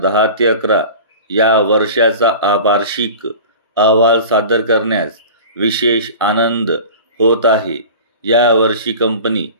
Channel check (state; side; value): inverted; both; correlation -0.37